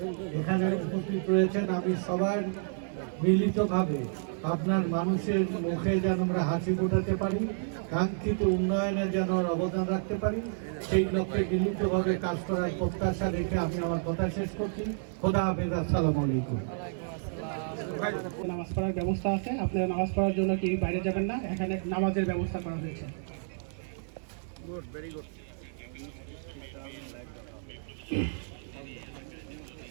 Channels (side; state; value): left; silent; 57 dB below the other